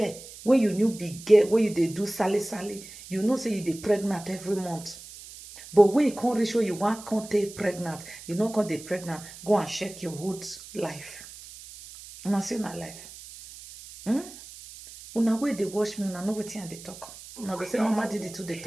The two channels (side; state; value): right; noise; hiss, 16 dB below the sound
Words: when you new be gay, when you dey do sally, you know say you dey pregnant every month. But when you can't reach where you want can't take pregnant, you know can't dey pregnant, go and check your whole life. Una see na life. Una way they watch me, una know wetin I dey talk. Una go say Mama Didi too dey